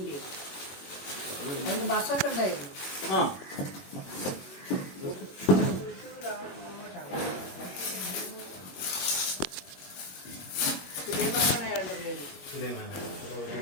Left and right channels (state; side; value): late; right; 21 ms